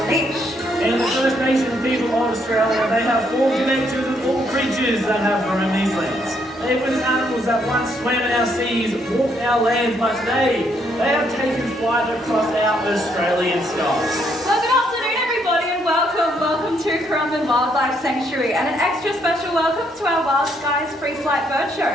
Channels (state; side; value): normal; both; correlation 0.72